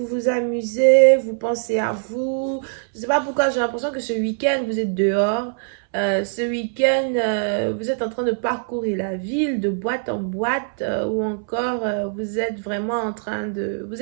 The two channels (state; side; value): silent; left; 64 dB below the other